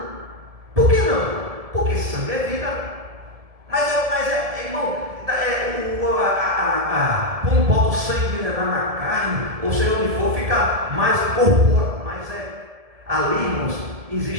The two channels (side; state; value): left; late; 1.7 ms